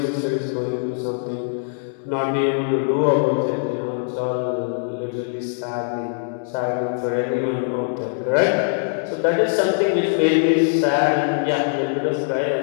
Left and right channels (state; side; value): silent; right; digital silence